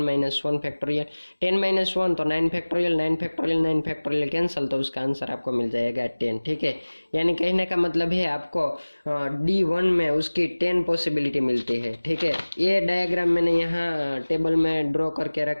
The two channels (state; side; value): inverted; both; correlation -1.00